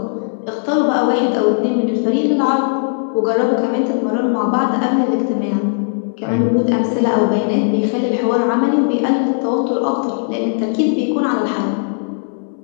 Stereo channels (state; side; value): silent; right; 68 dB below the other